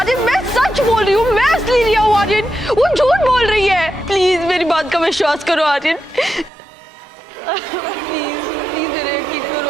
मैं सच बोल रही हूँ, मैं असली रिया हूँ। आर्यन वो झूठ बोल रही है, प्लीज मेरी बात का विश्वास करो। आर्यन प्लीज प्लीज मेरा यकीन करो।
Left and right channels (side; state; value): left; drops out; at 6.5 s